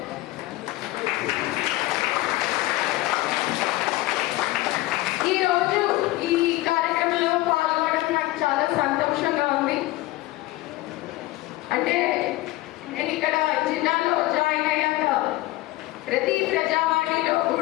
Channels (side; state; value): right; quieter; 18.5 dB